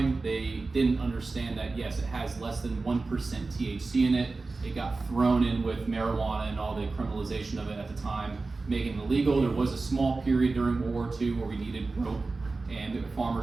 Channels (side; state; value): left; quieter; 3.7 dB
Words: they didn't understand that yes, it has less than 1% THC in it. It got thrown in with marijuana and all the criminalization of it at the time, making it illegal. There was a small period during World War II where we needed rope, and the